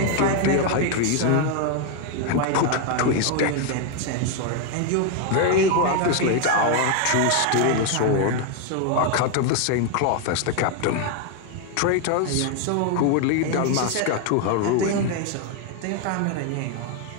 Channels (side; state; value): both; different; correlation 0.01